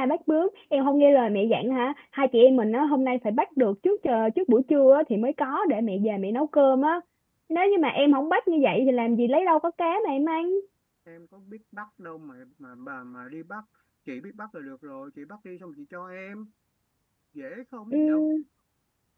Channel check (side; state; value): both; identical; correlation 1.00